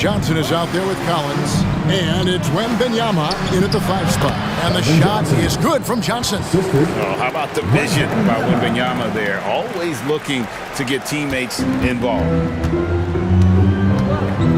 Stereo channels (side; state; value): both; identical; correlation 1.00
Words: is out there with Collins. And it's Wembanyama in at the 5 spot. And the shot is good from Johnson. Oh, how about the vision by Wembanyama there? Always looking to get teammates involved.